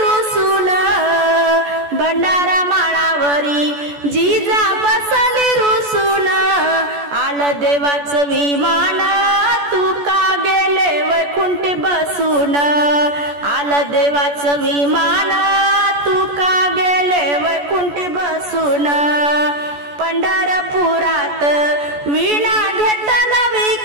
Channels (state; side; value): late; left; 14 ms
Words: भंडारा माळावरी जिजा बसली रुसून. आलं देवाचं विमान तुका गेले वैकुंठी बसून, आलं देवाचं विमान तुका गेले वैकुंठी बसून. पंढरपुरात वीणा घेतला